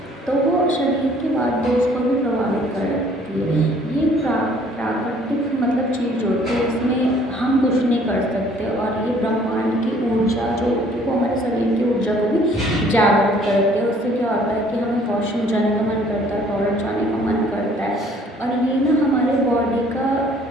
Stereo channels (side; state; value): both; normal; correlation 0.58